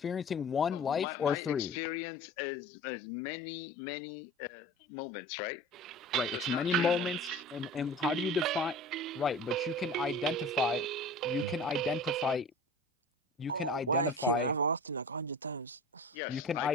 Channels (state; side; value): normal; both; correlation 0.38